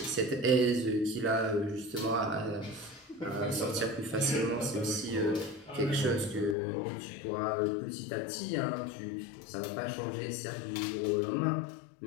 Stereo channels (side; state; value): right; drops out; at 6.6 s